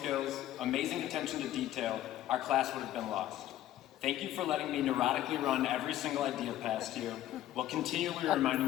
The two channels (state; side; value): quieter; right; 13.2 dB